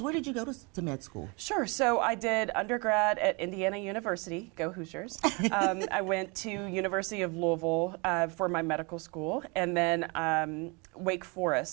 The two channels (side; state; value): left; quieter; 30.2 dB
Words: Where did you go to med school? Sure. So I did undergrad at Indiana University. Go Hoosiers. I went to University of Louisville for my medical school, and then Wake